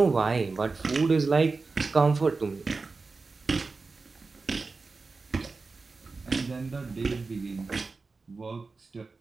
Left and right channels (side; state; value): left; quieter; 4.1 dB